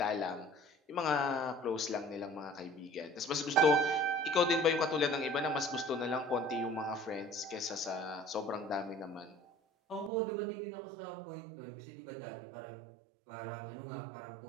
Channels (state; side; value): drops out; left; at 10.1 s